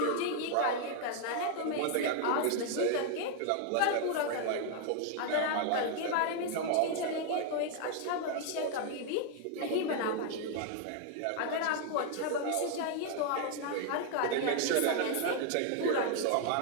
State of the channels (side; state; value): both; different; correlation 0.00